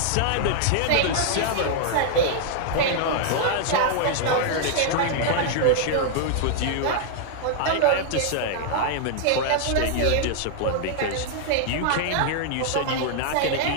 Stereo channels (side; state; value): both; different; correlation -0.01